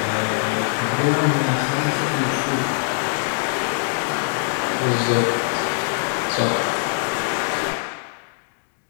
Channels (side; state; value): right; silent; digital silence